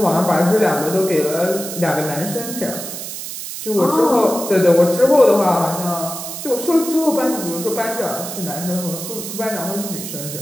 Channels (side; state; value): right; noise; hiss, 8 dB below the sound